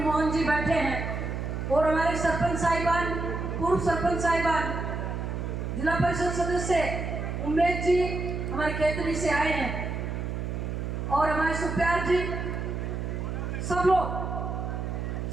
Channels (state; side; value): noise; right; hum, 4 dB below the sound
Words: मोहन जी बैठे हैं और हमारे सरपंच साहिबान, पूर्व सरपंच साहिबान, जिला परिषद सदस्य उमेश जी हमारे खेतरी से आए हैं और हमारे सुप्यार जी, सब लोग,